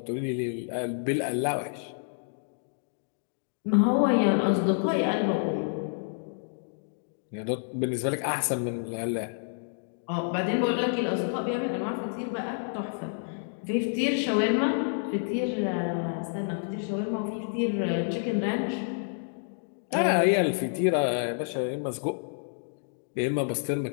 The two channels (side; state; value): right; silent; digital silence